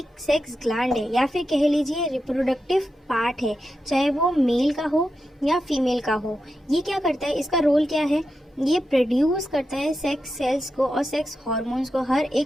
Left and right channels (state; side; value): normal; both; correlation 0.88